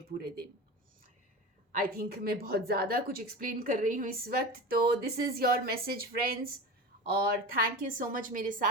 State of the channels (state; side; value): normal; both; correlation 0.29